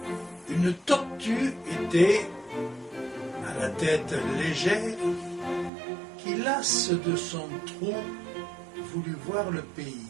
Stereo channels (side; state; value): left; drops out; at 5.7 s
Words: Une tortue était, à la tête légère, qui, lasse de son trou, voulut voir le pays.